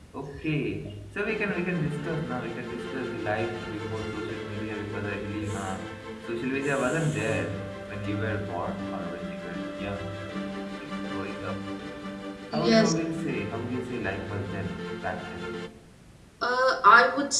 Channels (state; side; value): identical; both; correlation 1.00